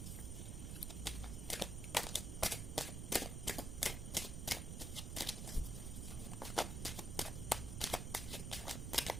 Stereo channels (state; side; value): noise; right; rumble, 3 dB below the sound